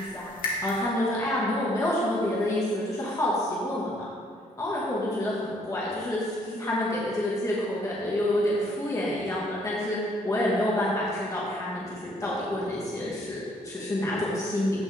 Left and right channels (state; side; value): normal; both; correlation 0.65